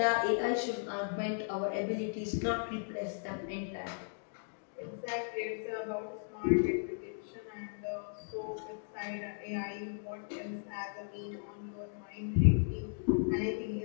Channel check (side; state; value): right; silent; digital silence